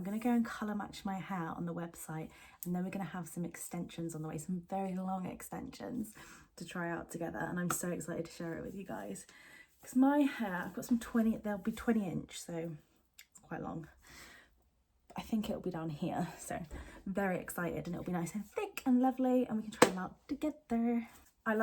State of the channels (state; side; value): identical; both; correlation 1.00